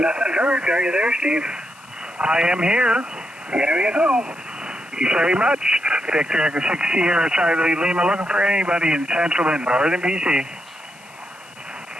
heard. Are you there, Steve? I am here. There you go. Thank you very much. Victor Echo 6 Sierra Charlie Lima, looking for anybody in Central and Northern BC.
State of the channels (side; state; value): left; noise; hiss, 25 dB below the sound